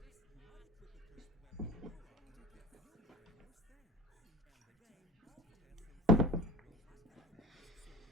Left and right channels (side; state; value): both; normal; correlation 0.36